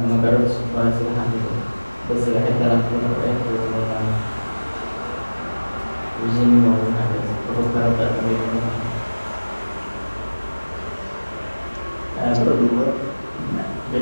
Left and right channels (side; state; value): both; inverted; correlation -1.00